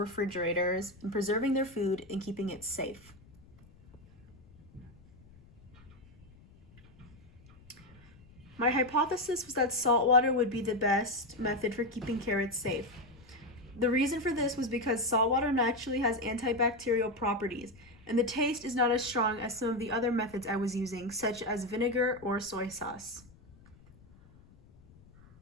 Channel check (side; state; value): left; noise; rumble, 25 dB below the sound